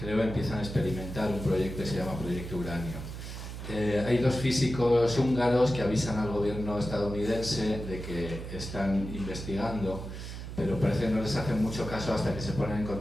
empiezan a experimentar un proyecto que se llama Proyecto Uranio. Hay dos físicos húngaros que avisan al gobierno estadounidense de que están investigando, pero parece que no les hacen mucho caso hasta que se ponen en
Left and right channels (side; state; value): right; noise; hum, 8 dB below the sound